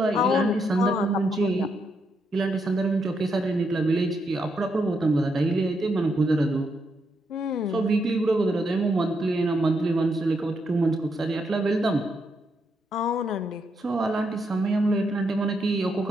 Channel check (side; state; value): both; normal; correlation 0.79